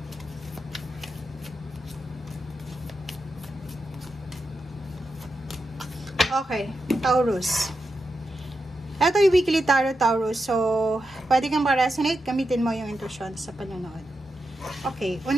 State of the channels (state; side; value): normal; both; correlation 0.87